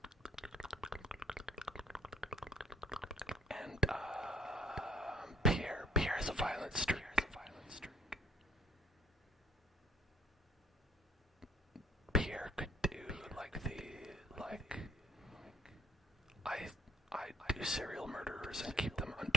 And Pierre has a violent streak. Pierre could do I do serial murderers and keep them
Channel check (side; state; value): both; normal; correlation 0.58